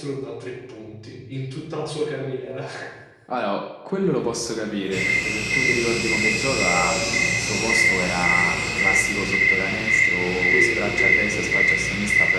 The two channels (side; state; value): both; identical; correlation 1.00